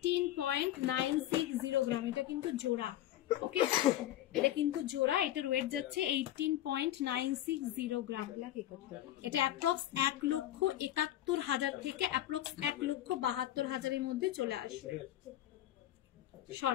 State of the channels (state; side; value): quieter; right; 13.2 dB